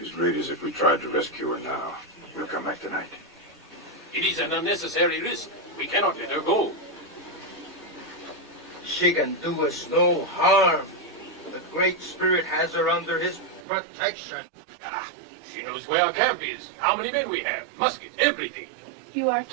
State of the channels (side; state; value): left; drops out; at 13.7 s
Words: great as if we tried to rescue her now. We'll come back tonight. It is an unnecessary risk. We cannot let her go. She can do us no harm. The Great Spirit has her under his protection. Ah, she knows where our camp is, how many men we have, muskets, everything. You are